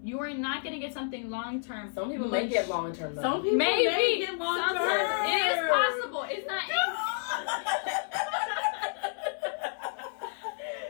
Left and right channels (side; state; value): right; silent; 58 dB below the other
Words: You are not going to get something long term. Some people may get long term though. Some people may get long term. It is possible. It's not.